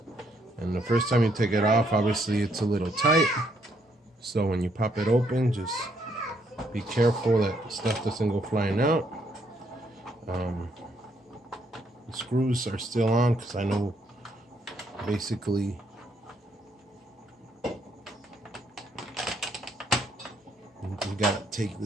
And the first time you take it off, obviously it's a little tight. So when you pop it open, just be careful that stuff doesn't go flying out. The screws are still on because I know basically you gotta take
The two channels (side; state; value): both; normal; correlation 0.72